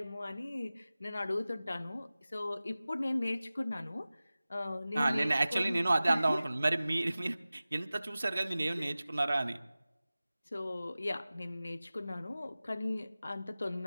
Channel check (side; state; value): both; inverted; correlation -0.97